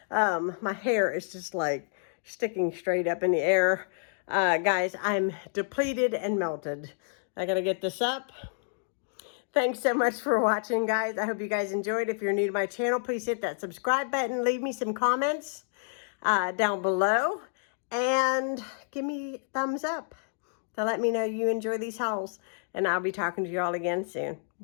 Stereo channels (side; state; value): right; silent; digital silence